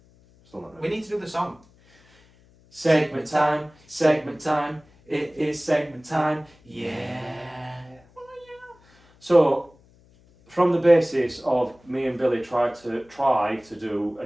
Still not ready. We need to do the song. Segment time, it is segment time, yeah. So, from the basis of me and Billy try to do a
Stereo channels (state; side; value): noise; left; hum, 30 dB below the sound